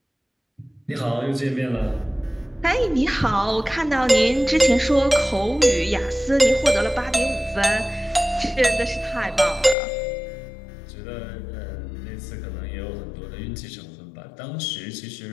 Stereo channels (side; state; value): right; drops out; at 9.8 s